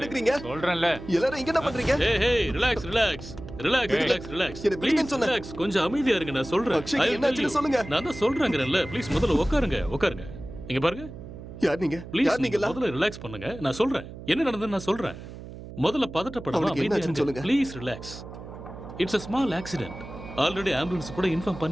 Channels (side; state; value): right; noise; hum, 13 dB below the sound